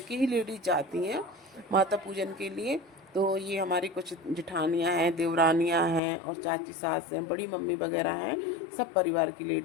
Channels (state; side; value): drops out; right; at 6.0 s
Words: ही लेडीज जाती हैं माता पूजन के लिए। तो ये हमारी कुछ जेठानियाँ हैं, देवरानियाँ हैं, और चाची सास हैं, बड़ी मम्मी वगैरह हैं। सब परिवार की